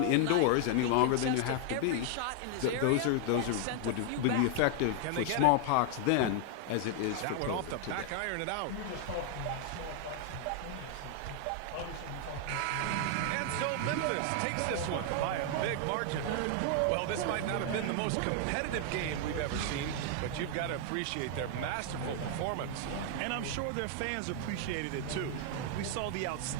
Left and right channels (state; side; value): different; both; correlation 0.00